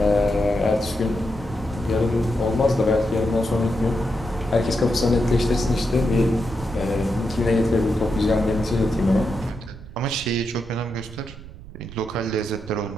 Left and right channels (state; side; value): noise; right; rumble, 15 dB below the sound